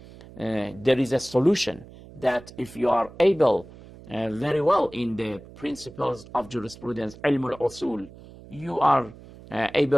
There is a solution that if you are able very well in the principles of jurisprudence, ilm al-usul, you are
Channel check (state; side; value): noise; right; hum, 19 dB below the sound